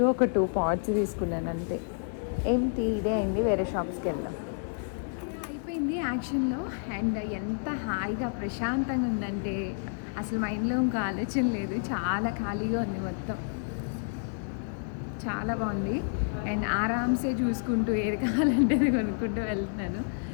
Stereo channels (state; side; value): silent; right; digital silence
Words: ఒక 2 పాట్స్ తీసుకున్నాను అంతే. ఏం తీసేయండి, వేరే షాప్స్కి వెళ్దాం. అయిపోయింది యాక్షన్లో. అండ్ ఎంత హాయిగా ప్రశాంతంగా ఉందంటే అసలు మైండ్లో ఇంకా ఆలోచన లేదు, చాలా ఖాళీగా ఉంది మొత్తం. చాలా బాగుంది. అండ్ ఆరామ్సే చూసుకుంటూ ఏది కావాలంటే అది కొనుక్కుంటూ వెళ్తున్నాను.